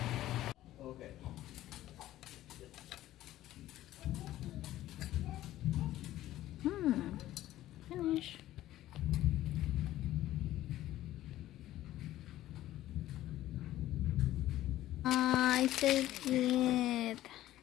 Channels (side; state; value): right; quieter; 14.3 dB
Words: Okay. Finish. Ay, so cute.